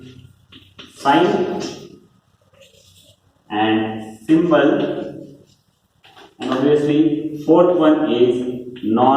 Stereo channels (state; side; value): identical; both; correlation 1.00